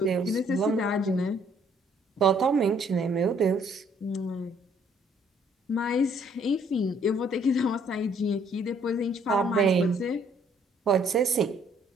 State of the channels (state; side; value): normal; both; correlation 0.64